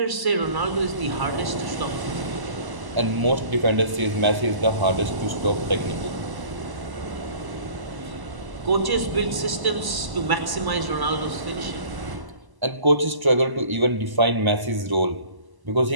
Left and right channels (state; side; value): late; left; 1.0 ms